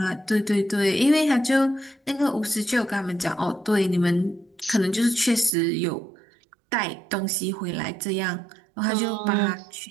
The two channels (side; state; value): left; drops out; at 5.5 s